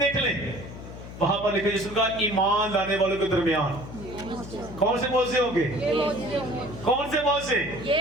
लें, वहां पर लिखा यीशु का ईमान लाने वालों के दरमियान कौन से मोजे होंगे? कौन से मोजे?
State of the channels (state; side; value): noise; left; hum, 12 dB below the sound